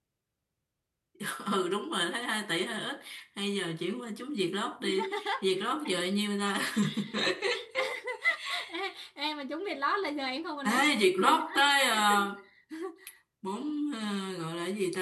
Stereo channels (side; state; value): both; identical; correlation 1.00